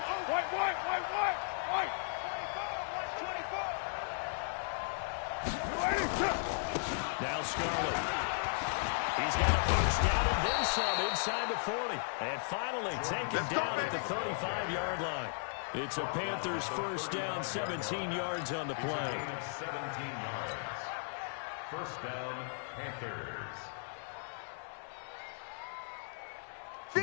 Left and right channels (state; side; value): silent; right; digital silence